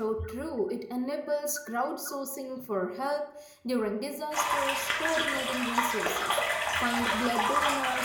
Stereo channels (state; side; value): identical; both; correlation 1.00